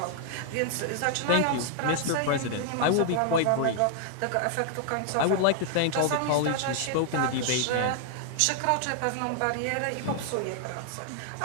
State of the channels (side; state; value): both; different; correlation 0.00